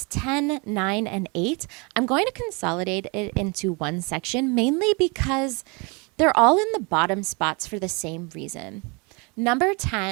10, 9, and 8, I'm going to consolidate it into one section, mainly because they're all in the bottom spots for the same reason. Number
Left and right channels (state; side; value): quieter; left; 30.5 dB